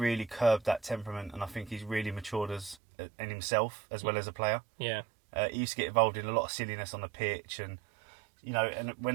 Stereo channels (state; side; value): drops out; left; at 2.8 s